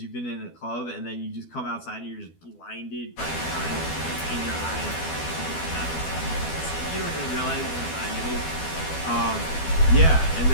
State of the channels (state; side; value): late; right; 12 ms